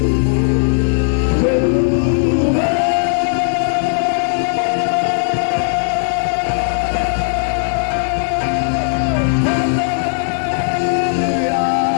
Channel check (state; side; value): silent; right; 68 dB below the other